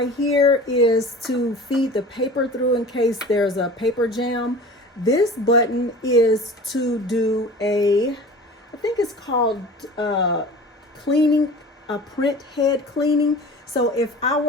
here is to feed the paper through in case there's a paper jam. This button is to do I think it's called cleaning, a print head cleaning. So if I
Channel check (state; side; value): normal; both; correlation 0.39